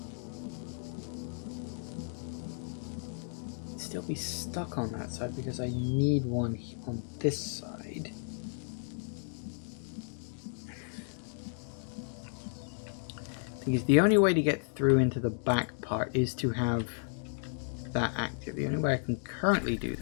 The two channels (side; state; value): right; silent; digital silence